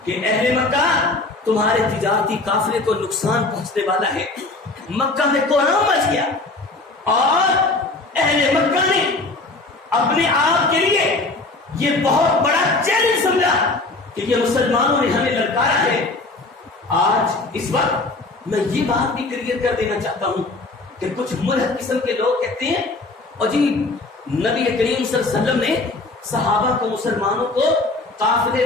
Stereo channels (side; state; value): right; quieter; 3.2 dB